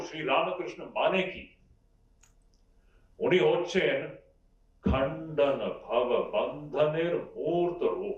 শ্রী রামকৃষ্ণ মানে কি? উনি হচ্ছেন খণ্ডন ভব বন্ধনের মূর্ত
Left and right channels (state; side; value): identical; both; correlation 1.00